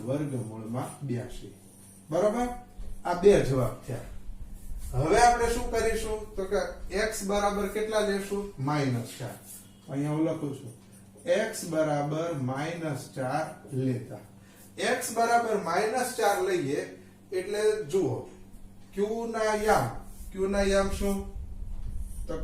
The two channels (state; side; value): identical; both; correlation 1.00